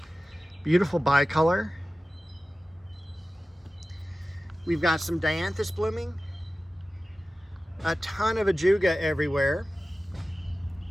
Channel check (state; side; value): normal; both; correlation 0.96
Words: Beautiful bicolor. We've got some dianthus blooming. A ton of ajuga everywhere.